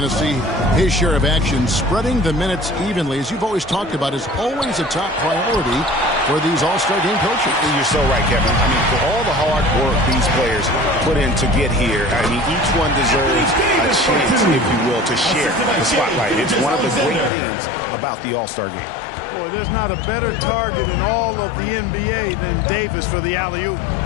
to see his share of action. Spreading the minutes evenly, as you've always talked about, is always a top priority for these All-Star game coaches. You're so right, Kevin. I mean, for all the hard work these players put in to get here, I mean, each one deserves a chance, if you will, to share the spotlight. It's one of the great things about the All-Star game. Boy, there's not a better target in all of the NBA than Davis for the alley-oop.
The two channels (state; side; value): drops out; right; at 17.3 s